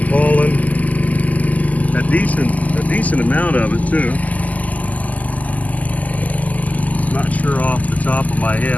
pollen. A decent amount of it too. Not sure off the top of my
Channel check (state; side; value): late; right; 0.077 ms